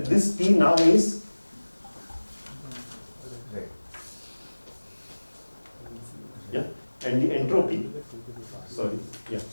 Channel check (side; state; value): both; inverted; correlation -1.00